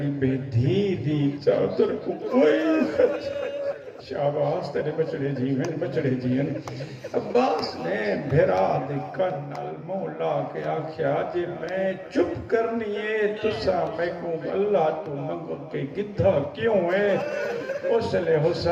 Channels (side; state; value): both; identical; correlation 1.00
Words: بے دھی دی چادر کو کوئی خط شہباز تیرے بچڑے جیون عباس نے بھیرا دے کنال مولا کے آکھیا جے میں چپ کرنی ہے تسا میں کو اللہ تو منگو کے گدھا کیوں ہے اس لئے